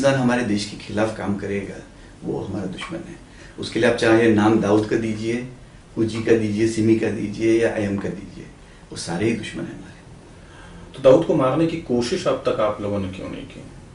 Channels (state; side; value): identical; both; correlation 1.00